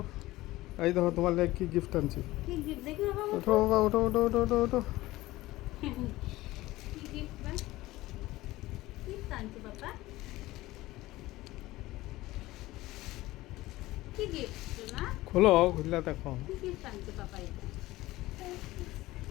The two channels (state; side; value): quieter; right; 18.0 dB